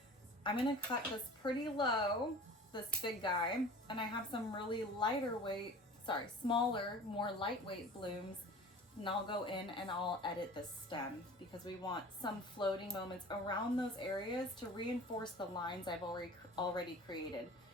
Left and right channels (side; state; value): both; normal; correlation 0.40